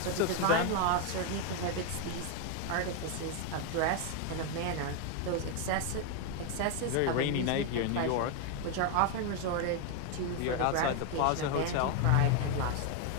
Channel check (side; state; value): both; different; correlation 0.01